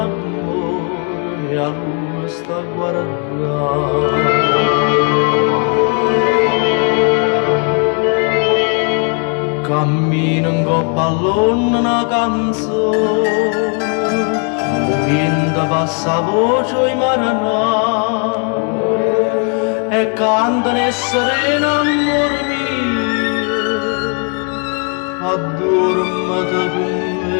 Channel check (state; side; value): quieter; right; 37.3 dB